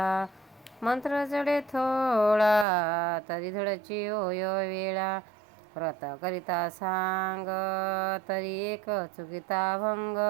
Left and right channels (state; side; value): drops out; left; at 2.7 s